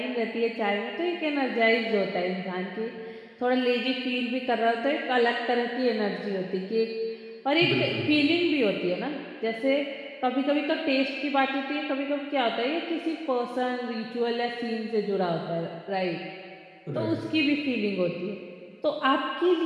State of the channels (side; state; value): both; identical; correlation 1.00